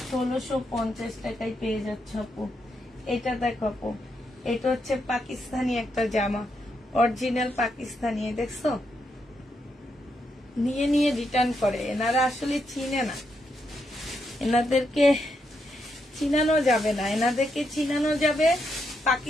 1650 টাকায় পেয়ে যাচ্ছে আপু। এটা দেখো আপু, এটা হচ্ছে পাকিস্তানি একটা জামা, অরিজিনাল পাকিস্তানি, দেখছো, নিয়ে নিয়ে রিটার্ন করে। এনারা আসলে চিনে না, এনাদেরকে চিনানো যাবে না, এনাদেরকে চিনানো যাবে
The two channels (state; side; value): normal; both; correlation 0.81